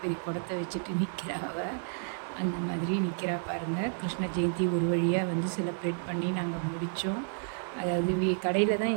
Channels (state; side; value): silent; left; digital silence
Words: பெரிய குடத்தை வச்சுட்டு நிற்கிறா அவள். அந்த மாதிரி நிற்கிறா பாருங்கள். கிருஷ்ண ஜெயந்தி ஒரு வழியாக செலிப்ரேட் பண்ணி நாங்கள் முடித்தோம். அதாவது கடையில் தான்